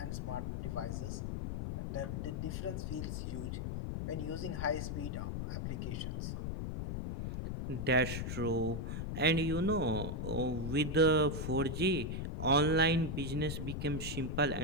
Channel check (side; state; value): left; noise; rumble, 3 dB below the sound